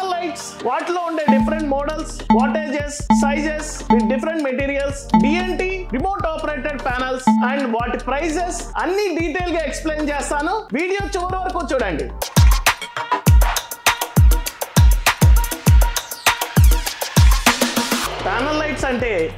లైట్స్, వాటిలో ఉండే different models, wattages, sizes with different materials, DNT remote operated panels and వాటి ప్రైజెస్ అన్ని డీటెయిల్ గా ఎక్స్ప్లెయిన్ చేస్తాను. వీడియో చివరి వరకు చూడండి. ప్యానల్ లైట్స్ అంటే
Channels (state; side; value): identical; both; correlation 1.00